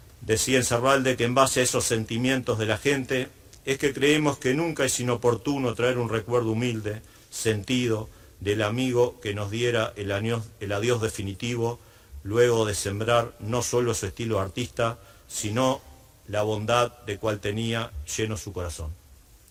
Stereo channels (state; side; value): identical; both; correlation 1.00